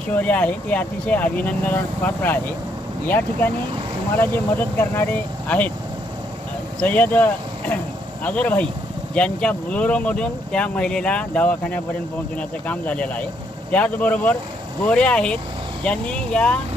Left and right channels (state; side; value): normal; both; correlation 0.72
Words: शौर्य आहे ते अतिशय अभिनंदनास पात्र आहे। या ठिकाणी तुम्हाला जे मदत करणारे आहेत सय्यद अझर भाई, ज्यांच्या बुलोरोमधून त्या महिलेला दवाखान्यापर्यंत पोहोचवण्याचं काम झालेलं आहे। त्याचबरोबर गोरे आहेत, ज्यांनी या